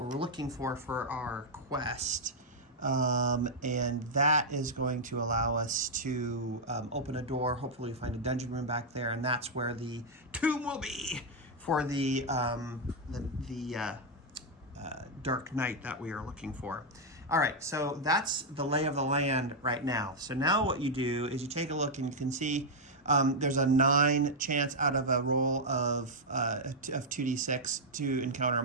looking for our quest. And that is going to allow us to open a door. Hopefully we find a dungeon room back there, and that's where the tomb will be for the Dark Knight that we are looking for. All right, so that's the lay of the land right now. So now what you do is you take a look and you can see there's a 9 chance out of a roll of 2d6 to encounter a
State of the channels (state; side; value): normal; both; correlation -0.02